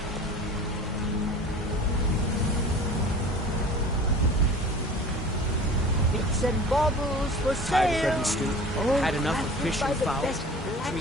Bits and baubles for Tired of sale. bread and stew? All Had enough of crafted fish by and the fowl? best Treat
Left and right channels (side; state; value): both; normal; correlation 0.41